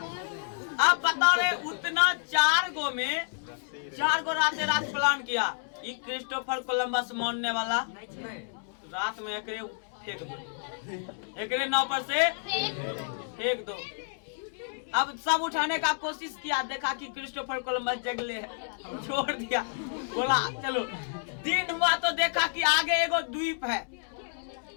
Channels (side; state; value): right; silent; digital silence